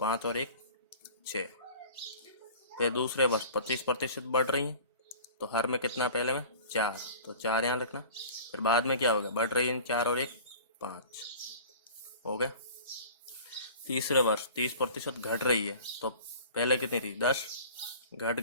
और 1 6। फिर दूसरे वर्ष 25% बढ़ रही है तो हर में कितना पहले में 4, तो 4 यहाँ रखना। फिर बाद में क्या होगा, बढ़ रही है 4 और 1 5 हो गया। तीसरे वर्ष 30% घट रही है तो पहले कितनी थी 10, घट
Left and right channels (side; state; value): both; inverted; correlation -0.42